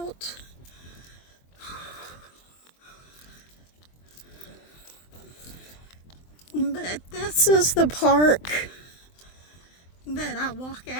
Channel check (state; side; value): late; right; 23 ms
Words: But this is the park that I walk